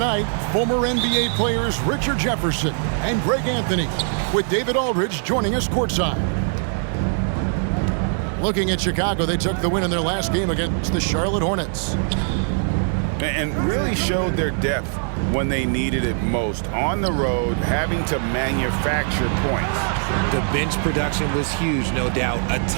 former NBA players Richard Jefferson and Greg Anthony, with David Aldridge joining us courtside. Looking at Chicago, they took the win in their last game against the Charlotte Hornets. And really showed their depth when they needed it most. On the road, having to manufacture points. The bench production was huge, no doubt. A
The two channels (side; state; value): left; silent; digital silence